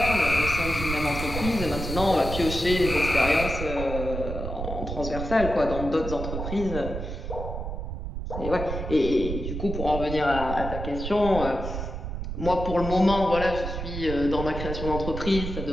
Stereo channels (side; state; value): right; noise; rumble, 5 dB below the sound